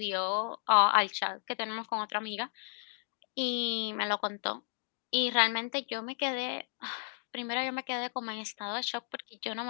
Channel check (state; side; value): silent; right; 55 dB below the other